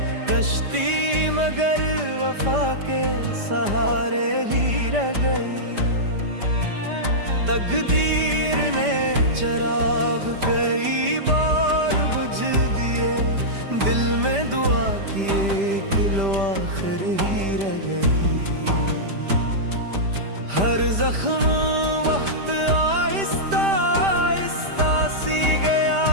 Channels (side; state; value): left; late; 5.0 ms